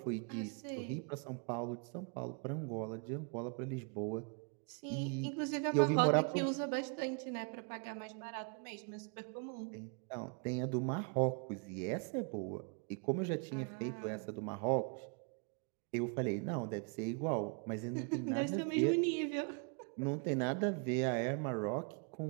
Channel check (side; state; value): left; quieter; 37.2 dB